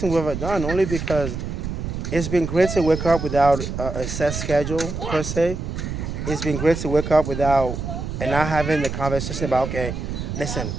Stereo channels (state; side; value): noise; right; rumble, 5 dB below the sound